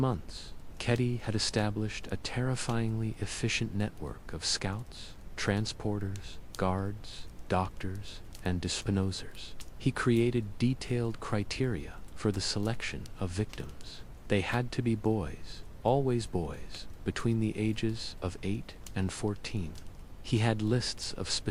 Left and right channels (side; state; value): both; identical; correlation 1.00